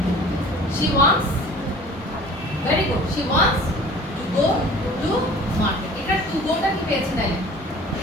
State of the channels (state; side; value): normal; both; correlation 0.46